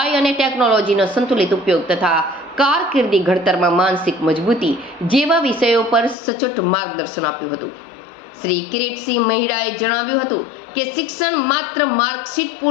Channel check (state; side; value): drops out; right; at 6.2 s